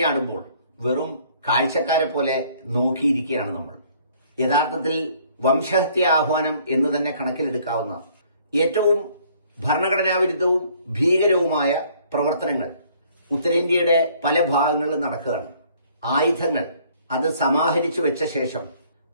വെറും കാഴ്ചക്കാരെ പോലെ നോക്കിയിരിക്കുകയാണ് നമ്മൾ. യഥാർത്ഥത്തിൽ വംശഹത്യ ആഹ്വാനം എന്ന് തന്നെ കണക്കിലെടുക്കാവുന്ന ഏറ്റവും ഭരണഘടനാവിരുദ്ധവും ഭീകരവുമായ പ്രവർത്തനങ്ങൾ ഉത്തരേന്ത്യയുടെ പല ഭാഗങ്ങളിലും നടക്കുകയാണ്. ആയുധങ്ങൾ അത് സമാഹരിച്ചു വെച്ച ശേഷം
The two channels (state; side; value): inverted; both; correlation -0.60